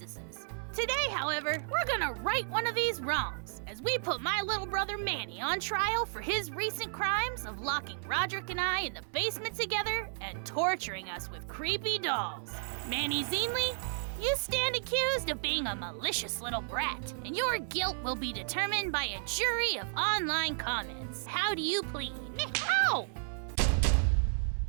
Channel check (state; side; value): silent; left; 56 dB below the other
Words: Today, however, we're gonna right one of these wrongs as we put my little brother Manny on trial for his recent crimes of locking Rodrick and I in the basement together and torturing us with creepy dolls. Manny Zeenley, you stand accused of being a malicious little brat, and your guilt will be determined by a jury of online comments. How do you plead? How?